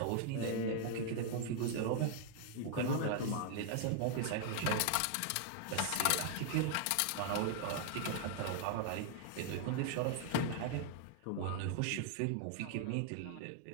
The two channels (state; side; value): different; both; correlation -0.01